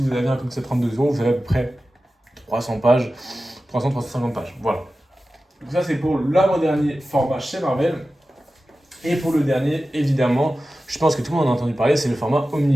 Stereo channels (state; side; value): normal; both; correlation 0.94